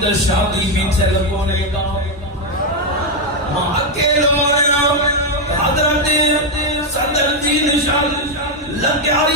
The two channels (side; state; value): both; normal; correlation 0.05